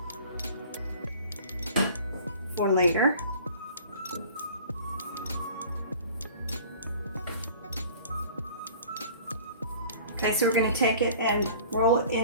for later. Okay, so we're going to take it and roll it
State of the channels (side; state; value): both; inverted; correlation -0.46